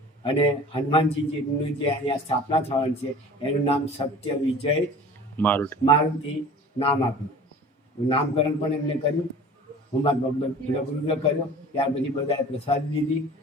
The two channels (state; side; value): normal; both; correlation 0.42